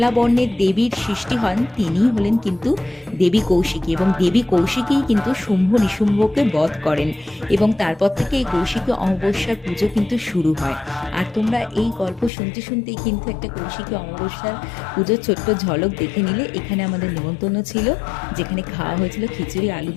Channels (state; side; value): drops out; right; at 12.3 s